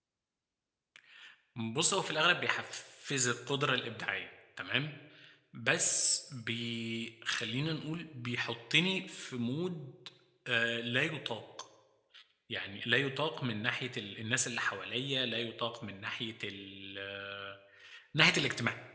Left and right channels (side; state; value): both; identical; correlation 1.00